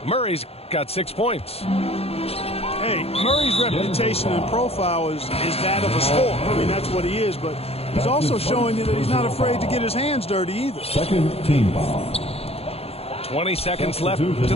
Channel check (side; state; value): right; late; 0.29 ms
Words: Murray's got 6 points. Hey, Murray's reputation and profile is that of a scorer. I mean, that's what he is, but he's also showing you that he's not afraid to get his hands dirty either. Second team foul. 20 seconds left in